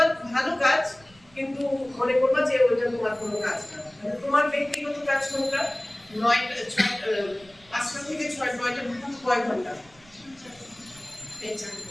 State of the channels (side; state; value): right; noise; rumble, 27 dB below the sound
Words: ভালো কাজ, কিন্তু মনে করবা যে ওইটা তোমার কোনো কাজ না। মানে তোমার ব্যক্তিগত কাজ কোনটা? 5টা থেকে 9টা কয় ঘন্টা এই